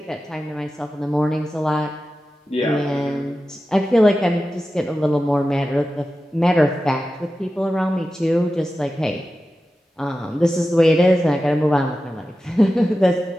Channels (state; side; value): normal; both; correlation 0.93